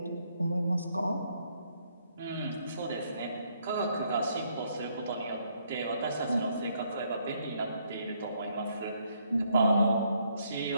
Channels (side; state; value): both; inverted; correlation -0.71